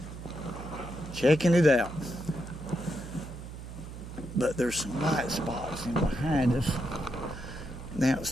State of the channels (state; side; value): noise; right; hum, 11 dB below the sound